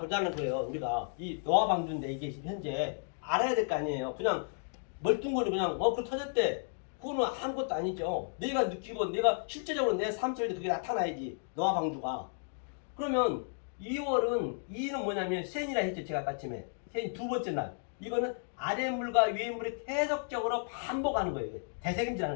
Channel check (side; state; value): right; silent; digital silence